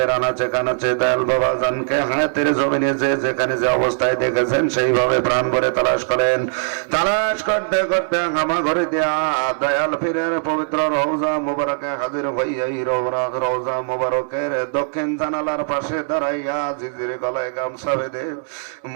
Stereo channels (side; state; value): left; silent; 66 dB below the other